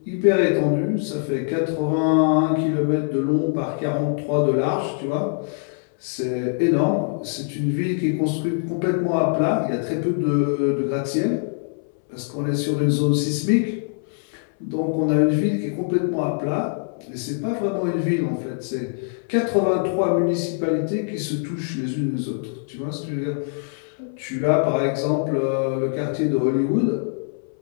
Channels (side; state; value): right; silent; 63 dB below the other